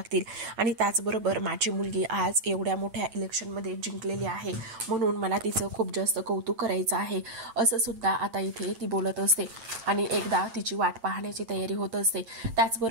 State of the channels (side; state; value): left; late; 8.9 ms